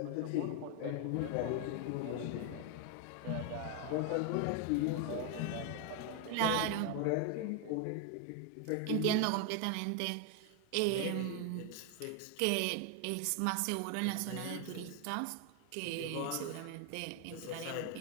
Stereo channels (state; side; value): different; both; correlation 0.01